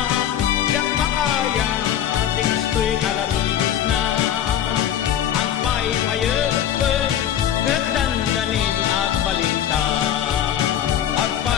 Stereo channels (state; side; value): quieter; right; 10.2 dB